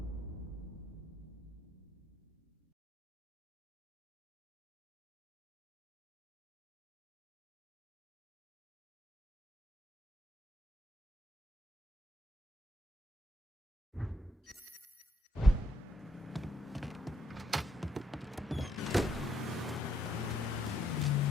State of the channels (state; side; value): normal; both; correlation 0.75